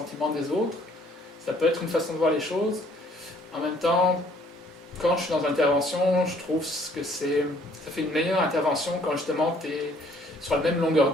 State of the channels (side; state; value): both; normal; correlation 0.61